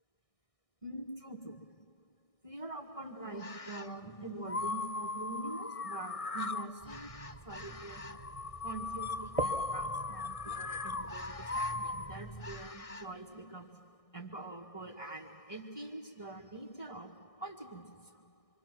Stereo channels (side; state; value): right; late; 1.6 ms